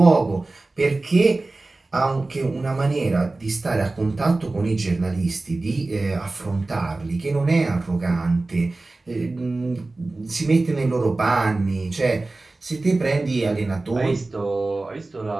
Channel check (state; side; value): quieter; left; 3.2 dB